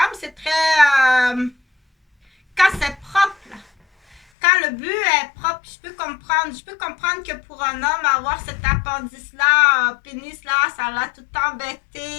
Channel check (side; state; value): right; drops out; at 4.2 s